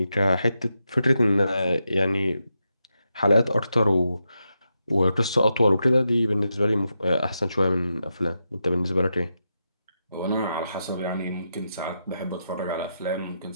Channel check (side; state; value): both; inverted; correlation -0.86